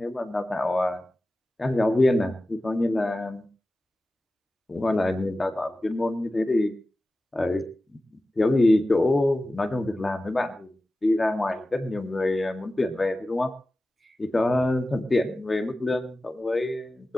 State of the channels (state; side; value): normal; both; correlation 0.95